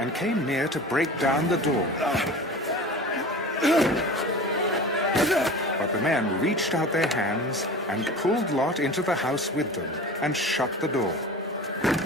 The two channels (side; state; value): both; normal; correlation 0.36